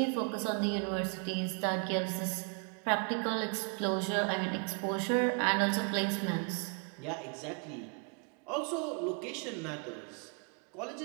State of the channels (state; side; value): quieter; left; 39.1 dB